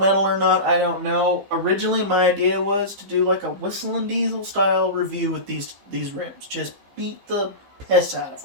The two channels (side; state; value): left; late; 15 ms